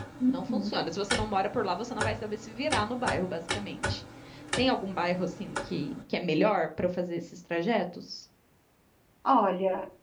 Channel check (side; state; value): both; identical; correlation 1.00